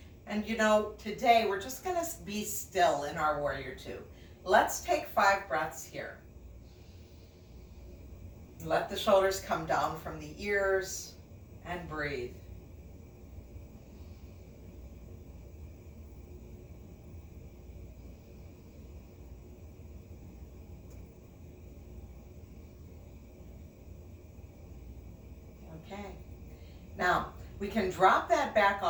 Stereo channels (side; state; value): both; identical; correlation 1.00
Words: And you know, today we're just gonna be still in our warrior two. Let's take 5 breaths here. Let the shoulders come down from the ears and breathe. Okay. Now, we can drop that back